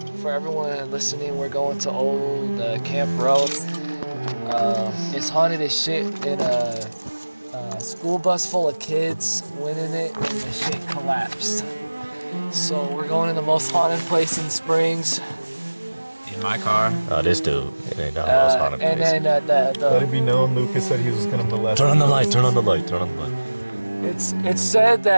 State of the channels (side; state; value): both; inverted; correlation -1.00